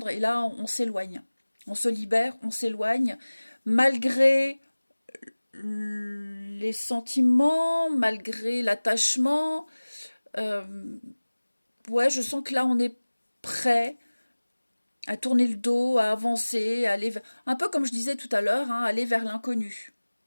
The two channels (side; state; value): both; inverted; correlation -1.00